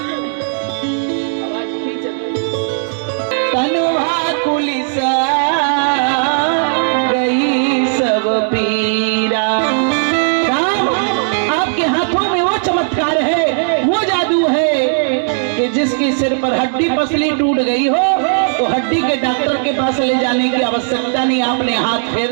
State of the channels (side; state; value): left; silent; digital silence